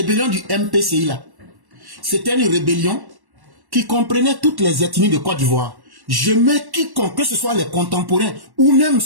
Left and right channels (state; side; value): late; left; 1.1 ms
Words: du MPCI là, c'était une rébellion qui comprenait toutes les ethnies de Côte d'Ivoire. Je mets quiconque, que ce soit les contemporains ou même